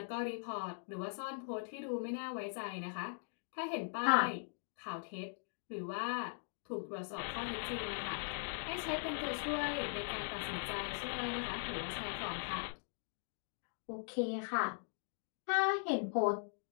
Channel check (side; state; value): right; silent; digital silence